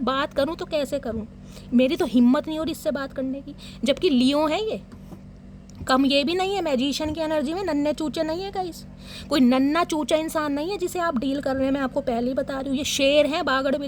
बात करूँ तो कैसे करूँ, मेरी तो हिम्मत नहीं हो रही इससे बात करने की। जबकि लियो है ये, कम ये भी नहीं है, मैजिशियन की एनर्जी में नन्हे चूचे नहीं है गाइस, कोई नन्ना चूचा इंसान नहीं है जिसे आप डील कर रहे हैं। मैं आपको पहले ही बता रही हूँ, ये शेर है बागड़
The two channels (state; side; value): identical; both; correlation 1.00